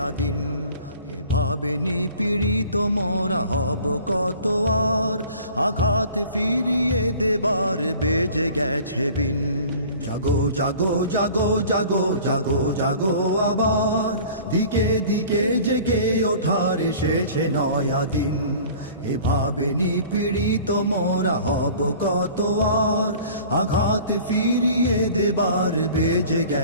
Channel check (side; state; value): both; inverted; correlation -0.46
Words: দিন। এভাবে নিপীড়িত মোরা হব কত আর, আঘাত ফিরিয়ে দেবার বেজে গেছে বিন। জাগো জাগো জাগো জাগো জাগো জাগো আবার দিকে দিকে জেগে ওঠার এসেছে নয়া দিন। এভাবে নিপীড়িত মোরা হব কত আর, আঘাত ফিরিয়ে দেবার বেজে